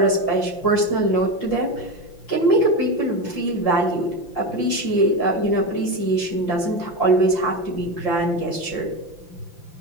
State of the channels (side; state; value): right; late; 5.8 ms